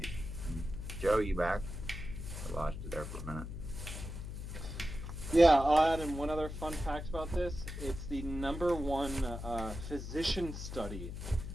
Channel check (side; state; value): left; noise; hum, 7 dB below the sound